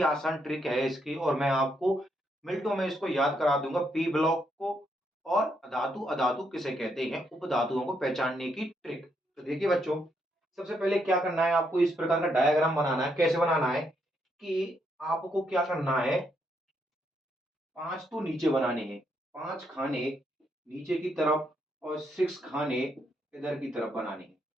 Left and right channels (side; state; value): both; normal; correlation 0.77